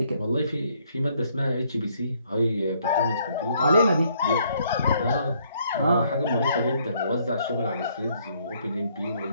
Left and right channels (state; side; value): inverted; both; correlation -0.68